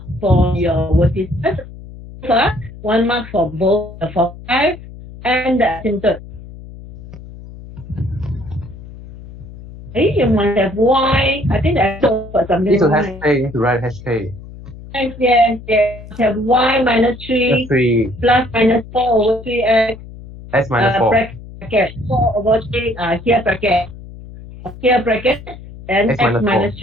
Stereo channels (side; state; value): left; noise; hum, 16 dB below the sound